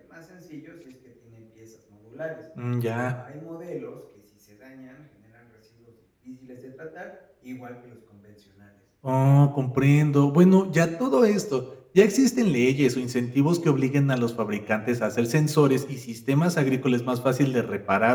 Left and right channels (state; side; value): identical; both; correlation 1.00